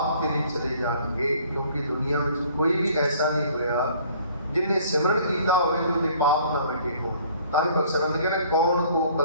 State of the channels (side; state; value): both; inverted; correlation -0.56